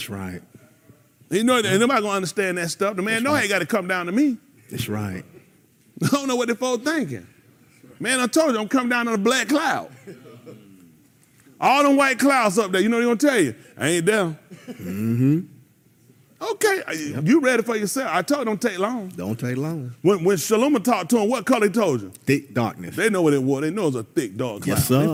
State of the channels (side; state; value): both; identical; correlation 1.00